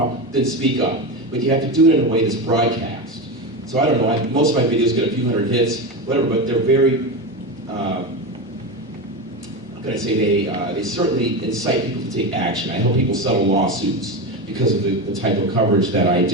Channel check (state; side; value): normal; both; correlation 0.19